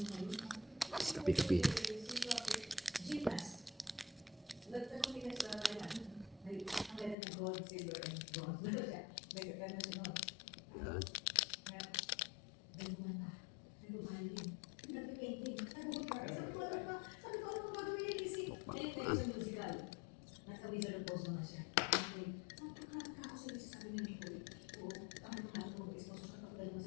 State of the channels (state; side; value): drops out; right; at 7.2 s